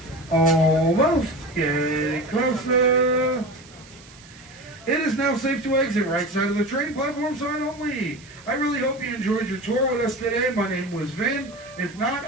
Almost getting closer. It is now safe to exit. Right side of the train, platform side only. I really hope you enjoyed your tour with us today. My name was Vin. If not,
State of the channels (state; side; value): noise; right; hiss, 23 dB below the sound